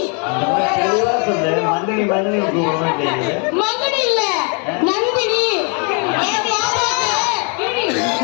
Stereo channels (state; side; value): quieter; right; 36.9 dB